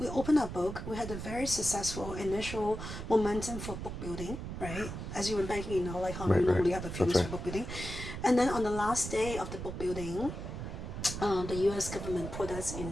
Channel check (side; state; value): right; noise; rumble, 7 dB below the sound